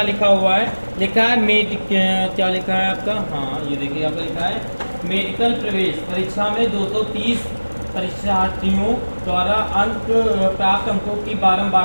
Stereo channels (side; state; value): both; inverted; correlation -1.00